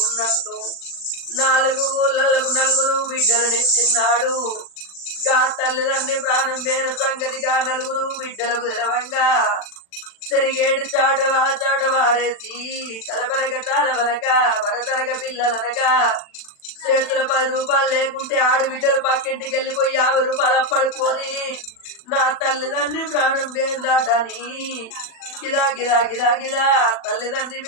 4 ఊళ్ళకు 4 బిడ్డలనిచ్చిన్నాడు గా తల్లిదండ్రి ప్రాణం వేరు సంగతిగా 4 బిడ్డలకు తెలవంగా సరిగేడు చాట వారేసి తలపనక తాళవనక వరతనక పిల్లలనక చేతుల 10 రూపాయలు లేకుంటే ఆడబిడ్డలు పక్కింటికి వెళ్ళిపోయి 50 రూపాయలు అప్పడుకొని నా తల్లిదండ్రి ప్రాణం దాటని గిదా గిదా గిదా గిదా తల్లిదండ్రి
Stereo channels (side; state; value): right; late; 40 ms